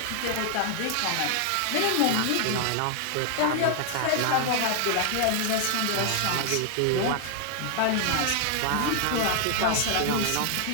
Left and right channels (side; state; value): both; different; correlation 0.00